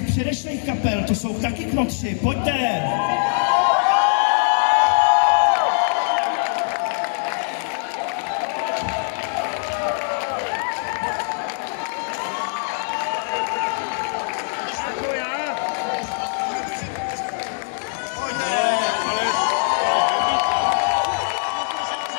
předešlých kapel, to jsou taky knotři, pojďte!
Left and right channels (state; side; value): silent; right; 64 dB below the other